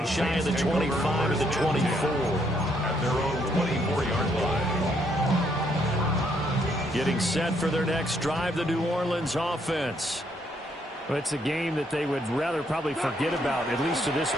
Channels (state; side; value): normal; both; correlation 0.72